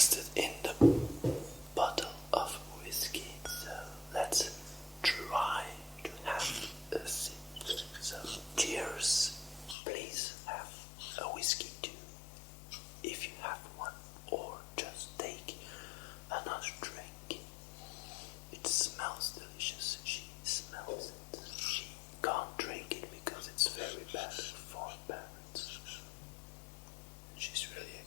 in the bottle of whiskey, so let's try to have a sip. So cheers. Please have a whiskey too, if you have one, or just take another drink. It smells delicious. She smells it. She can't drink it because it's very bad for parrots. She's really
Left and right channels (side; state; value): right; drops out; at 9.8 s